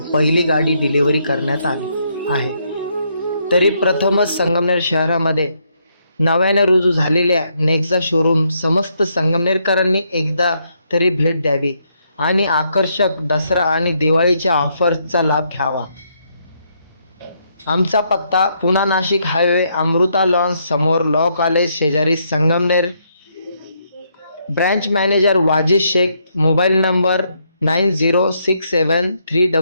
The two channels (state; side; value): inverted; both; correlation -0.75